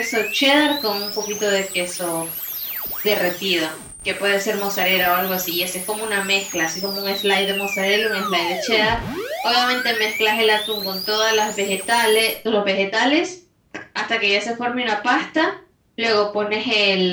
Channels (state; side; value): identical; both; correlation 1.00